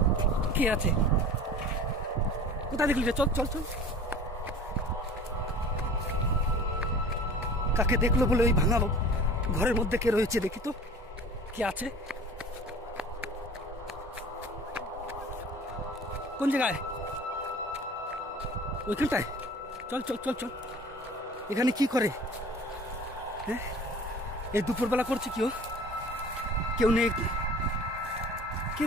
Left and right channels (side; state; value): both; normal; correlation 0.42